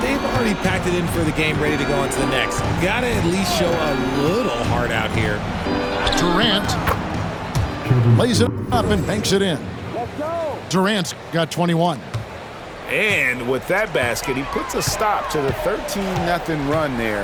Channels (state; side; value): identical; both; correlation 1.00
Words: they've already packed it in for the game, ready to go on to the next. Gotta at least show a little heart out here. Durant lays it up and banks it in. Durant's got 21. And with that basket, he puts a stop to the 13-0 run